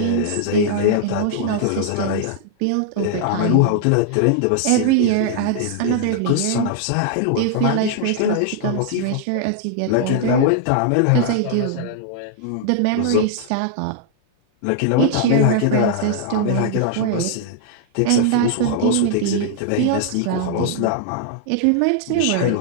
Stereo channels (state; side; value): different; both; correlation -0.01